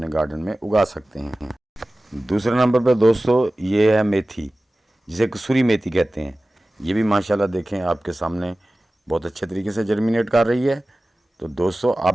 गार्डन में उगा सकते हैं। दूसरे नंबर पर दोस्तों ये है मेथी, जिसे कसूरी मेथी कहते हैं। ये भी माशाल्लाह देखें आपके सामने बहुत अच्छे तरीके से जर्मिनेट कर रही है। तो दोस्तों, आप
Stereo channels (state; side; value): normal; both; correlation 0.97